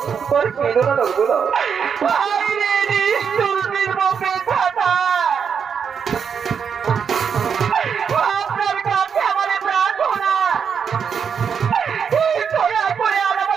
আপনার কাছে আমার প্রার্থনা, দয়া করে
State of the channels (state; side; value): quieter; left; 6.9 dB